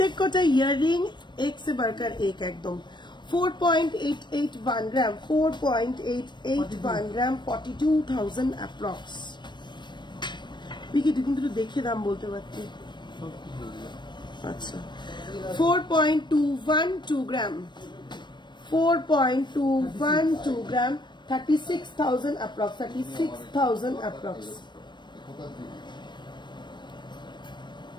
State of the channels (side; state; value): right; late; 0.22 ms